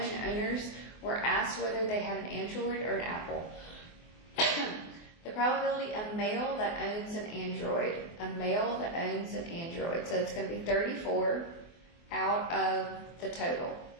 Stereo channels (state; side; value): late; right; 24 ms